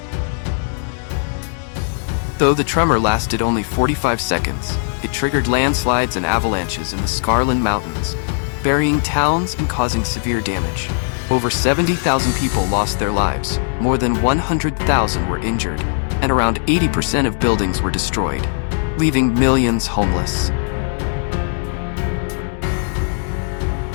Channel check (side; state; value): right; silent; 67 dB below the other